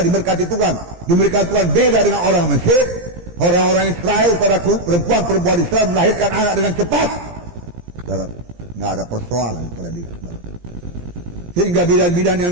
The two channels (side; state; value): left; late; 17 ms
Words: diberkati Tuhan. Diberikan Tuhan beda dengan orang Mesir. Orang-orang Israel, saudaraku, perempuan-perempuan Israel melahirkan anak dengan cepat. Saudaraku, nggak ada persoalan pada dia. Sehingga bidan-bidan yang